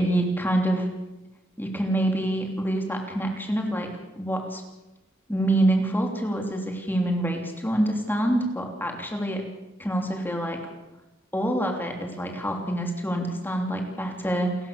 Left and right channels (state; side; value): normal; both; correlation 0.80